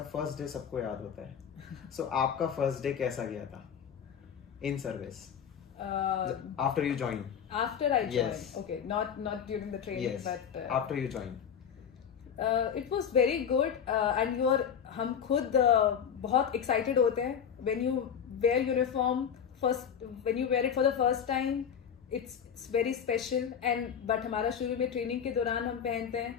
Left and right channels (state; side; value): quieter; right; 7.9 dB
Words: फर्स्ट डे सबको याद होता है। So आपका फर्स्ट डे कैसा गया था in service? After you joined. After I joined. Yes. Okay, not during the training, yes. but after you joined. It was very good, and हम खुद बहुत excited होते हैं when you wear uniform first, when you wear it for the first time, it's very special, and but हमारा शुरू में training के दौरान हम पहनते हैं,